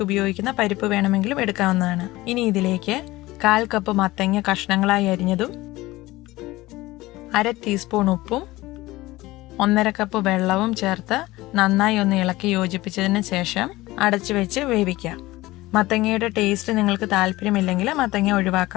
ഉപയോഗിക്കുന്ന പരിപ്പ് വേണമെങ്കിലും എടുക്കാവുന്നതാണ്. ഇനി ഇതിലേക്ക് 1/4 കപ്പ് മത്തങ്ങ കഷ്ണങ്ങളായി അരിഞ്ഞതും 1/2 ടീസ്പൂൺ ഉപ്പും 1/2 കപ്പ് വെള്ളവും ചേർത്ത് നന്നായി ഒന്ന് ഇളക്കി യോജിപ്പിച്ചതിന് ശേഷം അടച്ചു വെച്ച് വേവിക്കാം. മത്തങ്ങയുടെ ടേസ്റ്റ് നിങ്ങൾക്ക് താല്പര്യമില്ലെങ്കിൽ മത്തങ്ങ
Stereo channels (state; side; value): quieter; right; 18.8 dB